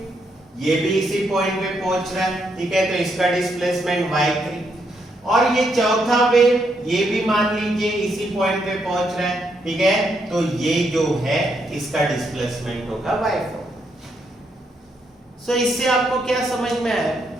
ये भी इसी पॉइंट पे पहुंच रहा है, ठीक है, तो इसका डिस्प्लेसमेंट y3। और ये चौथा वेव, ये भी मान लीजिए इसी पॉइंट पे पहुंच रहा है, ठीक है, तो ये जो है इसका डिस्प्लेसमेंट होगा y4। सो इससे आपको क्या समझ में आया?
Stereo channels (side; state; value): both; normal; correlation 0.77